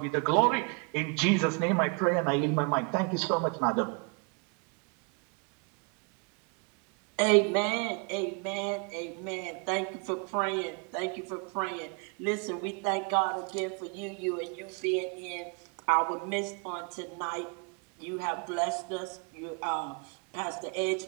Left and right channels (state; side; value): quieter; left; 34.0 dB